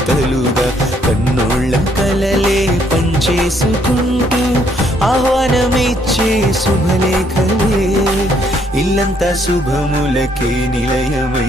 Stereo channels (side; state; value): both; normal; correlation 0.69